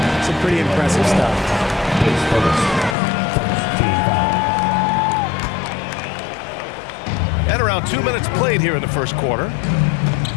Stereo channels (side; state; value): right; drops out; at 3.0 s